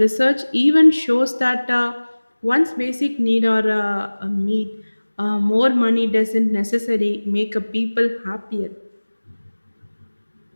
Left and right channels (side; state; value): both; inverted; correlation -1.00